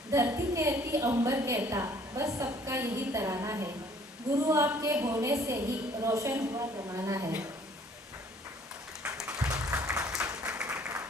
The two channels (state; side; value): normal; both; correlation 0.57